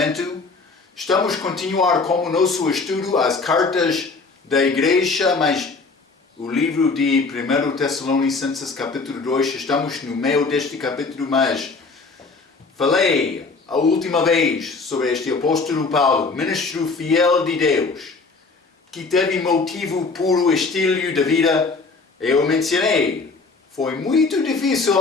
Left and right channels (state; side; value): quieter; right; 4.1 dB